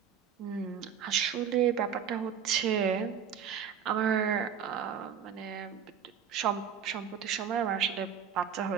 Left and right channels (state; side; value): quieter; left; 7.9 dB